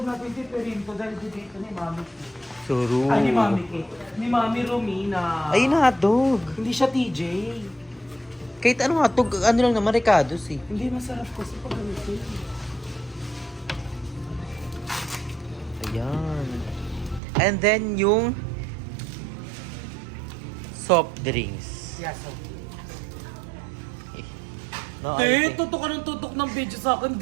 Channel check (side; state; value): left; drops out; at 17.2 s